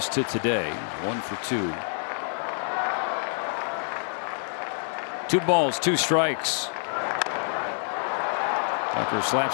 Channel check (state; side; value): silent; right; digital silence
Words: to today. 1 for 2. 2 balls, 2 strikes. Tucker